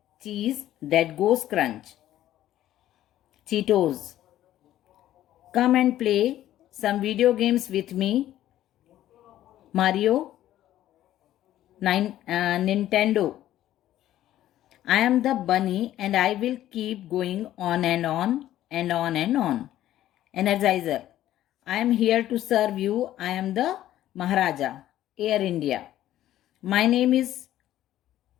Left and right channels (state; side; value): quieter; right; 13.1 dB